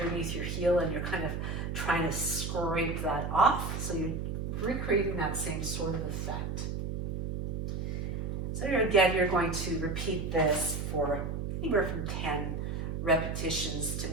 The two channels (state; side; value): noise; right; hum, 3 dB below the sound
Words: your heel, and you're kind of trying to scrape that off. So you're recreating that same sort of effect. So again, you're going to repeat this for anywhere from 10 repetitions to